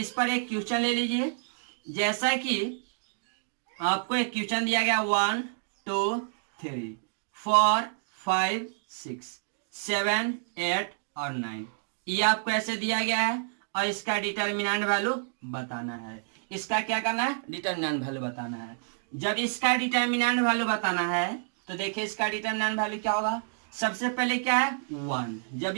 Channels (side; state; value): left; silent; digital silence